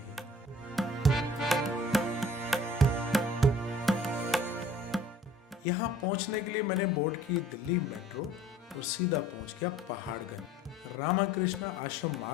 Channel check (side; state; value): both; normal; correlation 0.50